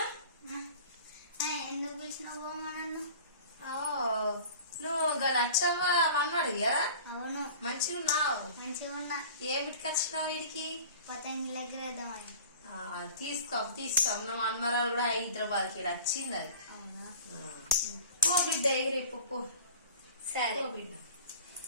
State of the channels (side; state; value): both; inverted; correlation -0.41